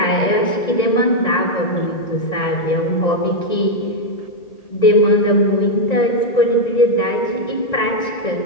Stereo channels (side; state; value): right; late; 1.9 ms